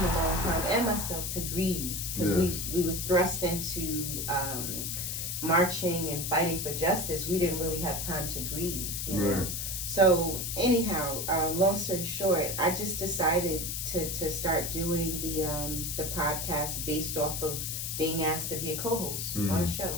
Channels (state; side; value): noise; left; hiss, 3 dB below the sound